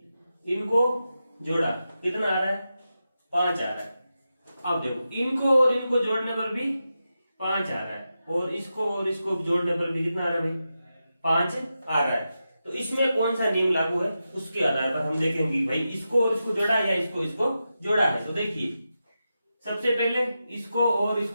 इनको जोड़ा, कितना आ रहा है? 5 आ रहा है। अब देखो, इनको और इनको जोड़ने पर भी 5 आ रहा है, और इसको जोड़ने पर भी कितना आ रहा है भाई? 5 आ रहा है। तो इसमें कौन सा नियम लागू है, उसके आधार पर हम देखेंगे भाई, इसको और इसको जोड़ा या इसको जोड़ा है। तो देखिए, सबसे पहले इसको और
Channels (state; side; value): inverted; both; correlation -0.90